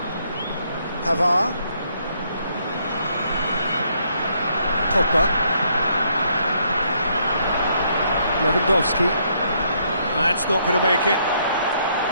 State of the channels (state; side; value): inverted; both; correlation -0.71